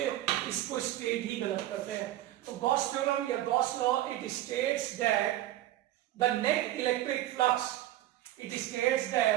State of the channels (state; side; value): quieter; left; 14.3 dB